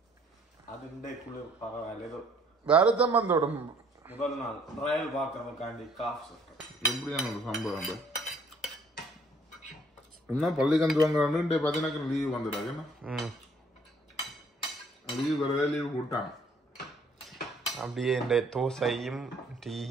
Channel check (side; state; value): both; normal; correlation 0.62